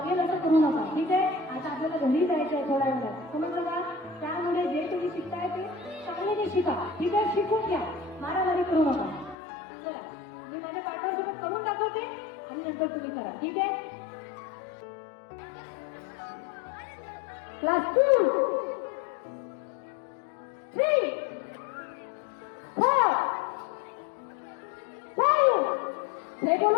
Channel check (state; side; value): drops out; right; at 9.3 s